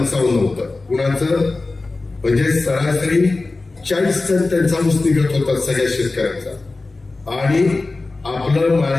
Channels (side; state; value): right; quieter; 3.4 dB